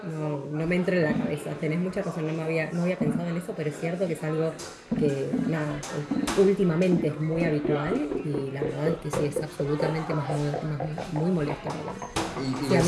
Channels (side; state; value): both; identical; correlation 1.00